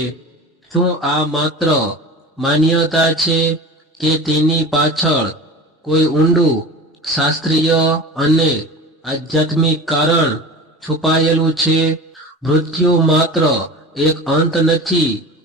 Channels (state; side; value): normal; both; correlation 0.34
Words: શું આ માત્ર માન્યતા છે કે તેની પાછળ કોઈ ઊંડું શાસ્ત્રીય અને આધ્યાત્મિક કારણ છુપાયેલું છે? મૃત્યુ માત્ર એક અંત નથી,